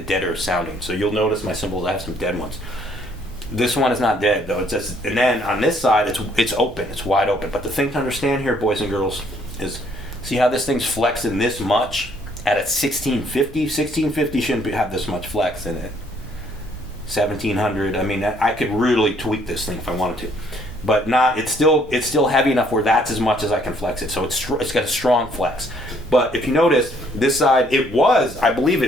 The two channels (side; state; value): right; noise; rumble, 19 dB below the sound